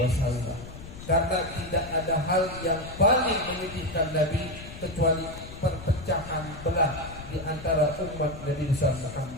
Karena tidak ada hal yang paling menyedihkan Nabi kecuali perpecahan belah di antara umat Nabi besar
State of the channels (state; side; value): noise; left; rumble, 13 dB below the sound